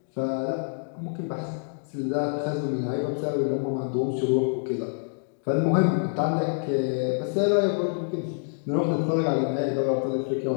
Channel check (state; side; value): silent; right; digital silence